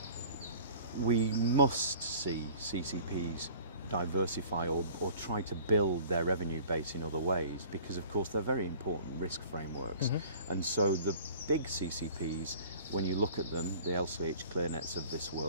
We must see CCPs diversify or try to build their revenue base in other ways, because of course they're very important risk frameworks. And so the big CCPs, when you look at them, the LCH ClearNets of this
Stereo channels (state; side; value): inverted; both; correlation -0.47